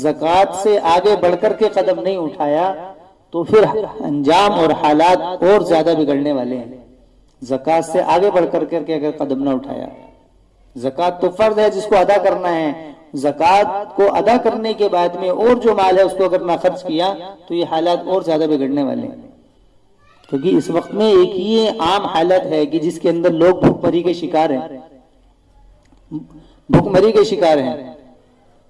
سے آگے بڑھ کر کے قدم نہیں اٹھایا تو پھر انجام اور حالات اور زیادہ بگڑنے والے ہیں۔ زکوٰۃ سے آگے بڑھ کر کے اگر قدم نہ اٹھایا، زکوٰۃ تو فرض ہے جس کو ادا کرنا ہے، زکوٰۃ کو ادا کرنے کے بعد میں اور جو مال ہے اس کو اگر نہ خرچ کیا تو یہ حالات اور زیادہ بگڑنے والے ہیں۔ کیونکہ اس وقت میں ایک یہ عام حالت ہے کہ جس کے اندر لوگ بھوک مری کے شکار ہیں، بھوک مری کے شکار ہیں۔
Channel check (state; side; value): identical; both; correlation 1.00